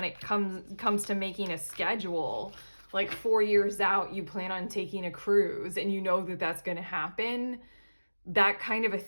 it comes to making a schedule, like 4 years out, you plan on taking a cruise and you know that that's going to happen. That kind of a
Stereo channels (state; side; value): inverted; both; correlation -1.00